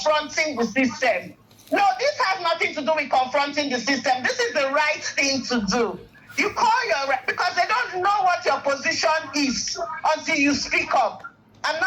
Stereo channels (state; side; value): identical; both; correlation 1.00